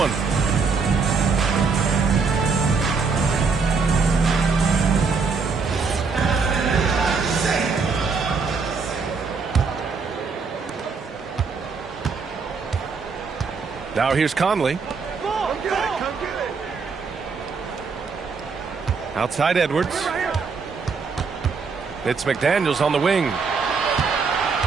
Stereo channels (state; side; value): quieter; left; 5.0 dB